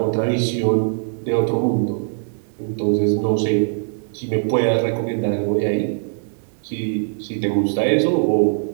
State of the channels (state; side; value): silent; left; 65 dB below the other